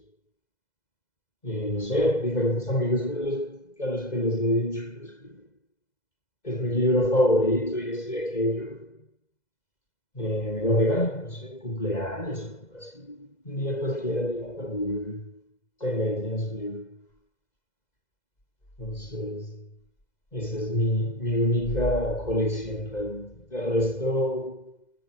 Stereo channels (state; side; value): late; right; 2.0 ms